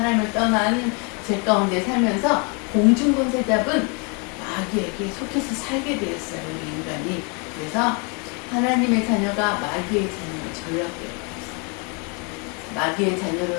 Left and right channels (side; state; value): right; quieter; 34.1 dB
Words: 떠난 죄 가운데 살면서 공중권세 잡은 마귀에게 속해서 살게 되었어요. 우리 인간이. 그래서 하나님의 자녀가 마귀의 자녀로 전락되어 있어요. 마귀의